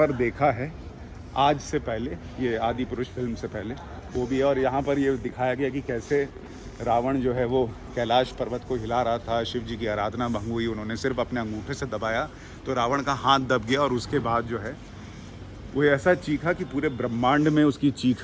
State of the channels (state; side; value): identical; both; correlation 1.00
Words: देखा है आज से पहले, ये आदि पुरुष फिल्म से पहले वो भी है। और यहाँ पर ये दिखाया गया कि कैसे रावण जो है वो कैलाश पर्वत को हिला रहा था, शिव जी की आराधना भंग हुई, उन्होंने सिर्फ अपने अंगूठे से दबाया तो रावण का हाथ दब गया और उसके बाद जो है वो ऐसा चीखा कि पूरे ब्रह्मांड में उसकी